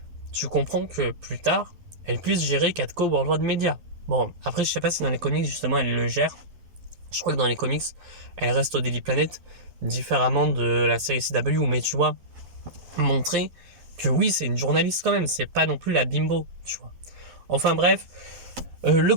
tu comprends que plus tard, elle puisse gérer Catco Worldwide Media. Bon, après, je sais pas si dans les comics, justement, elle le gère. Je crois que dans les comics, elle reste au Daily Planet, différemment de la série CW, mais tu vois, montrer que oui, c'est une journaliste quand même, c'est pas non plus la bimbo, tu vois. Enfin bref, le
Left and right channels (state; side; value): late; left; 11 ms